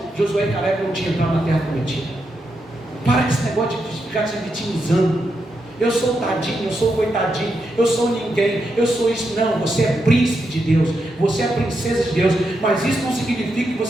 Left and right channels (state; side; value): normal; both; correlation 0.84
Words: Josué e Caleb não tinham entrado na terra prometida. Para com esse negócio de ficar se vitimizando. Eu sou tadinho, eu sou coitadinho, eu sou ninguém, eu sou isso. Não, você é príncipe de Deus, você é princesa de Deus. Mas isso não significa que